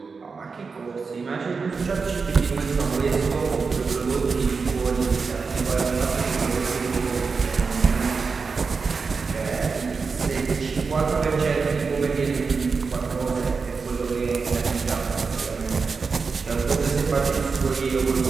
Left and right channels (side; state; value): left; quieter; 4.9 dB